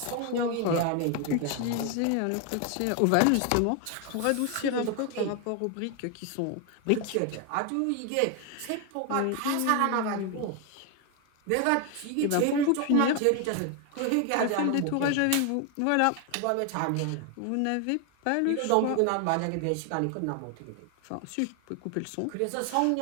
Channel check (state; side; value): different; both; correlation 0.01